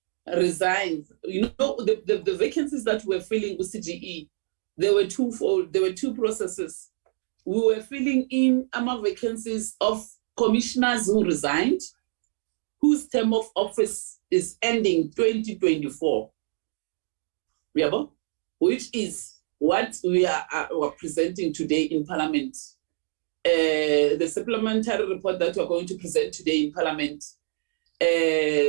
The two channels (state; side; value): silent; left; digital silence